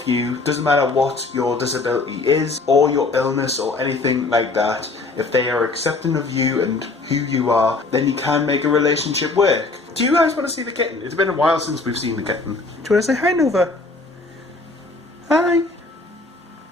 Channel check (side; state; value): right; quieter; 3.6 dB